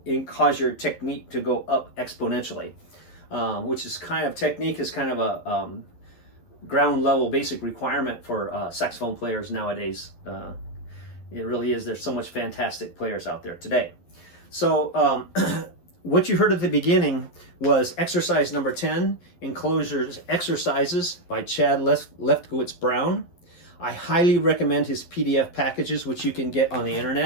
to cause your technique to go up exponentially, which is technique is kind of a ground level basic requirement for saxophone players nowadays. It really is. There's so much fantastic players out there today. So what you heard at the beginning was exercise number 10, Enclosure's Exercises by Chad Lefkowitz-Brown. I highly recommend his PDF packages, which you can get on the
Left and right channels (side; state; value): right; late; 12 ms